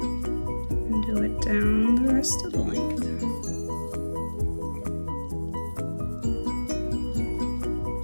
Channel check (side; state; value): both; inverted; correlation -1.00